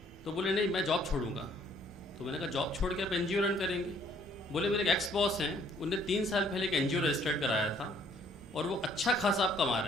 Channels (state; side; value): normal; both; correlation 0.62